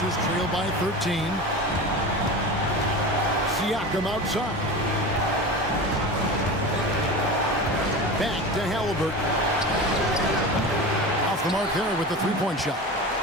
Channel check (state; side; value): normal; both; correlation 0.30